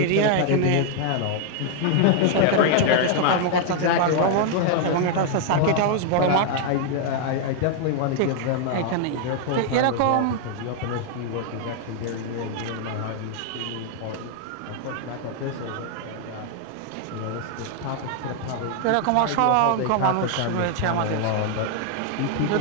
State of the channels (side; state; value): both; different; correlation 0.00